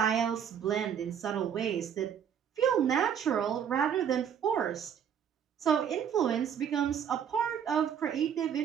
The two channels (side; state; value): left; quieter; 8.3 dB